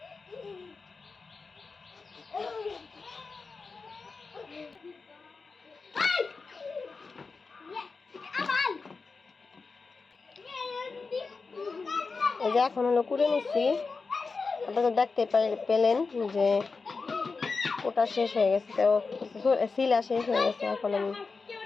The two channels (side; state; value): right; quieter; 4.4 dB